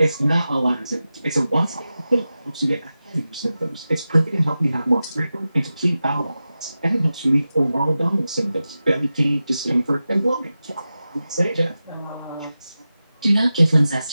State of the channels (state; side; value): inverted; both; correlation -0.93